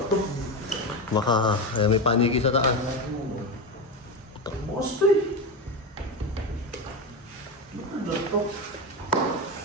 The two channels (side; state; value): both; normal; correlation 0.17